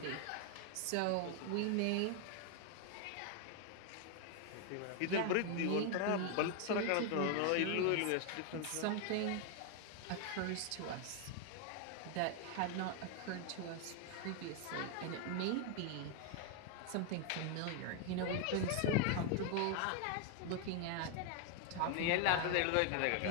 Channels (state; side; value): different; both; correlation 0.01